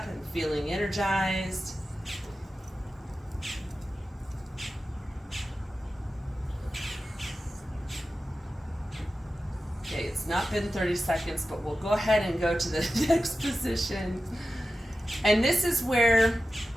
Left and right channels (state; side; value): normal; both; correlation 0.93